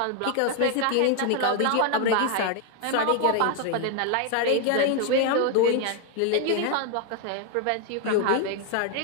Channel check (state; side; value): different; both; correlation 0.00